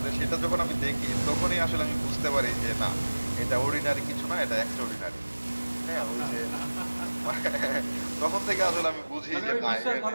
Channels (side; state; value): both; inverted; correlation -1.00